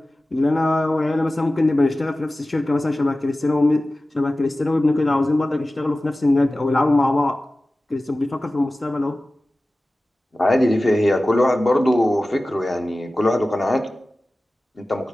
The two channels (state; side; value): normal; both; correlation 0.96